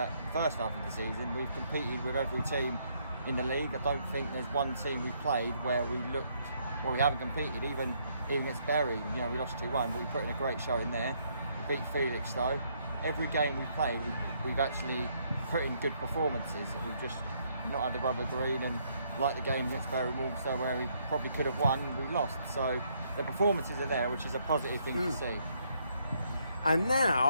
first half of the season. We've competed with every team in the league. I don't think there's one team we've played where we haven't competed, even against Bury. You know, we lost 2-1, but we put in a great show in there. We beat Felix though. Every game we played, we've actually put in good performances. We've just not had the rubber green, and like the game against Bury Walsall where we probably could have won, we lost. So the performances are there, which is a positive thing to see. And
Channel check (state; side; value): inverted; both; correlation -0.71